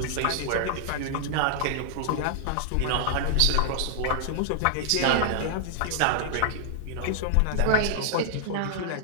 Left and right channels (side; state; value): both; different; correlation -0.01